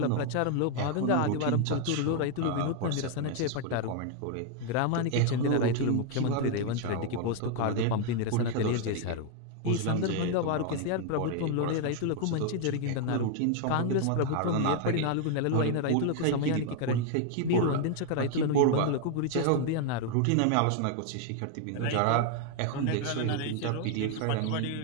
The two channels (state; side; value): different; both; correlation 0.00